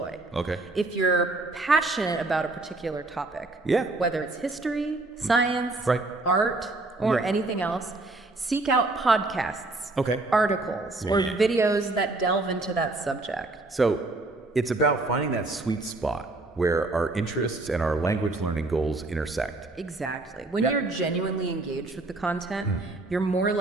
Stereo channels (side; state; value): left; quieter; 3.1 dB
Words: Okay. If you're passionate about a particular topic, whether it's history, science, Right. art, or anything else, seek out podcasts, articles, or videos that delve into that subject. So it's about finding that sweet spot where our interests and our language learning goals intersect. Exactly. When you're genuinely engaged with the content, you're more